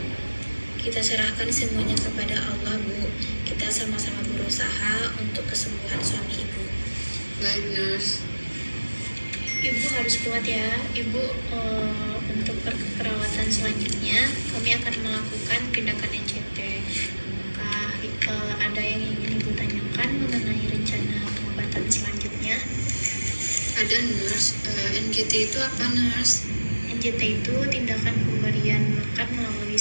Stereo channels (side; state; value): both; inverted; correlation -1.00